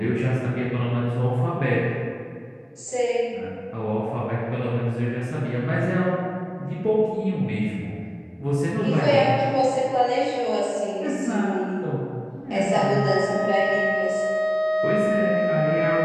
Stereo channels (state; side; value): identical; both; correlation 1.00